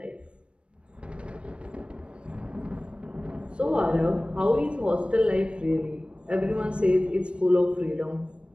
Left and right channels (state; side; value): late; left; 0.058 ms